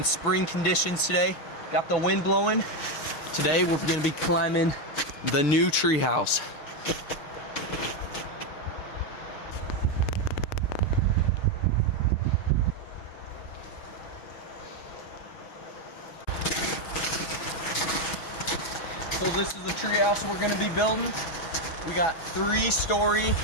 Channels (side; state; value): right; late; 6.2 ms